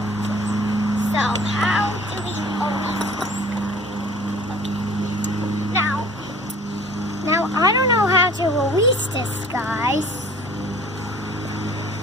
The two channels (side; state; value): both; normal; correlation 0.48